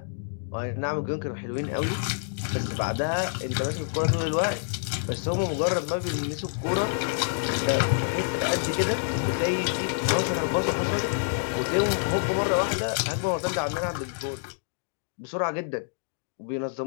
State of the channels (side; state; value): right; silent; digital silence